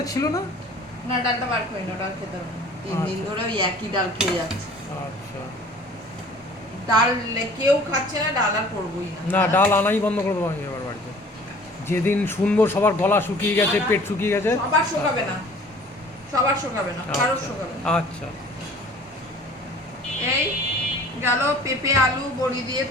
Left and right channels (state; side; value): normal; both; correlation 0.49